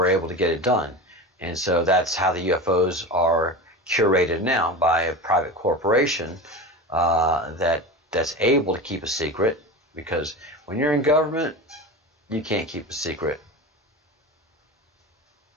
able to get it done. And so that's how the UFOs are curated now, by a private corporation that's able to keep a secret, because when you're in government, you can't keep a secret.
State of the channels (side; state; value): both; normal; correlation 0.28